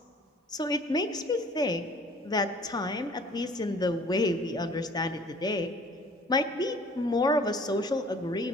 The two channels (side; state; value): both; normal; correlation 0.52